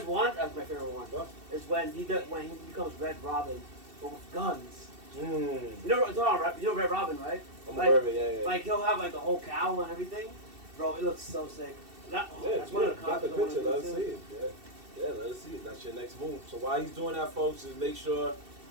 one, that's my favorite one. What? Is when he becomes Red Robin, but with guns. Mm. You know Red Robin, right? I'm Like- aware of it, yeah. Like he'll have like the whole cowl and everything. Bro, it looks so sick. That's one of the got the concepts I wanna picture, do, let us too. see it. Yeah, let us see it. That's your next move. So while he's doing that, folks, is make sure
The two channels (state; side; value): late; left; 2.7 ms